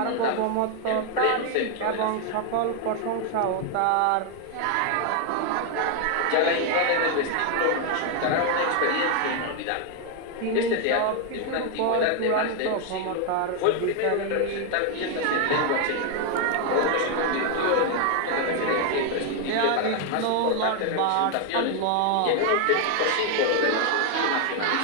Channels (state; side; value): different; both; correlation 0.00